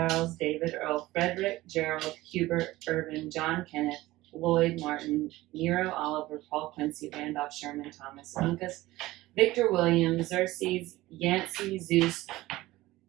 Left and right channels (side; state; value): left; quieter; 17.9 dB